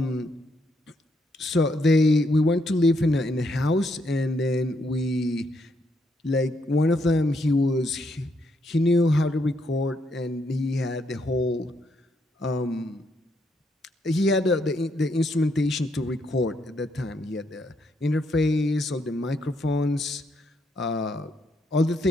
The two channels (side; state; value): both; normal; correlation 0.76